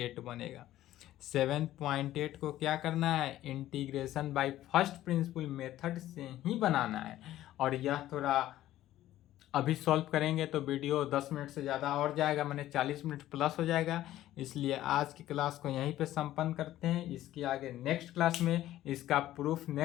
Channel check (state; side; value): quieter; right; 13.9 dB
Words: बनेगा। 7.8 को क्या करना है, integration by first principle method से ही बनाना है। और यह थोड़ा अभी सॉल्व करेंगे तो वीडियो 10 मिनट से ज़्यादा और जाएगा, मैंने 40 मिनट प्लस हो जाएगा। इसलिए आज की क्लास को यहीं पे संपन्न करते हैं। इसके आगे नेक्स्ट क्लास में इसका प्रूफ